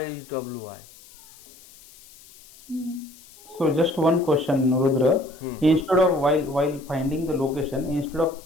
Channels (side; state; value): left; noise; hiss, 23 dB below the sound